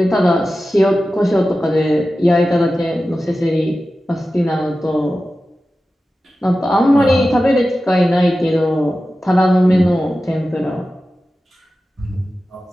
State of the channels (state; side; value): normal; both; correlation 0.94